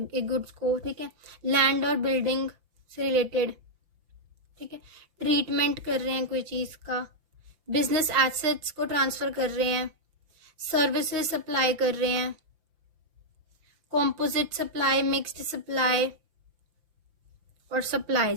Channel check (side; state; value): left; late; 5.8 ms